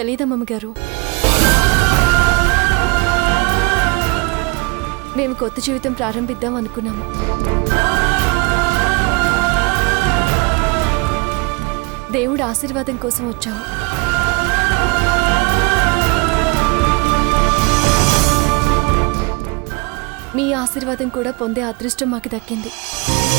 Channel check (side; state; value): left; quieter; 28.7 dB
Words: గారు. మేము కొత్త జీవితం ప్రారంభిద్దాం అనుకున్నాము. దేవుడు ఆశీర్వాదం కోసం వచ్చాము. మీ ఆశీర్వాదం కూడా పొందే అదృష్టం మాకు దక్కింది.